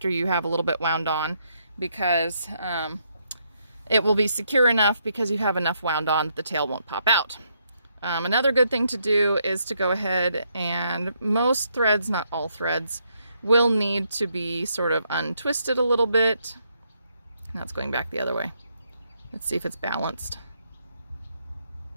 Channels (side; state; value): both; inverted; correlation -0.75